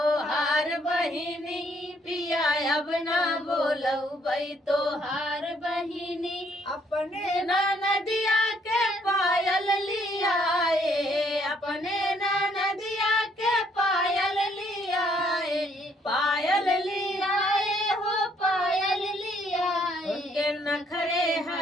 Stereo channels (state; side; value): normal; both; correlation 0.67